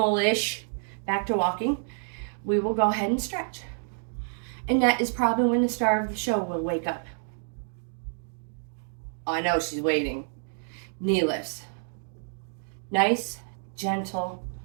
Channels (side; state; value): left; silent; digital silence